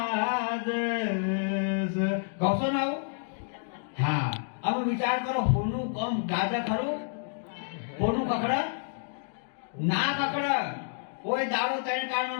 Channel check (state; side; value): silent; right; digital silence